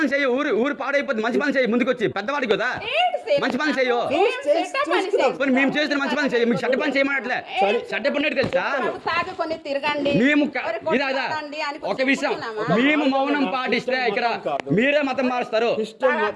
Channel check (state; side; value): identical; both; correlation 1.00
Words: చేయు. ఊరు పాడైపోతుంది. మంచి పని చేయి. ముందుకు వచ్చి పెద్దవాడి కదా మంచి పని చేయు. మేము చేసిన మంచి పని చేయి. మీకు చెడ్డ పని చేయమన్నట్లే. చెడ్డ పని తెలుసా? మేము ఇదా ఒక విషయం, మేము మౌనం పాటిస్తే ఇక్కడ మీరే మతం మారుస్తారు.